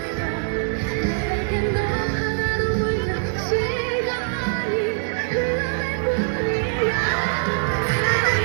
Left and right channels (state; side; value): silent; left; 64 dB below the other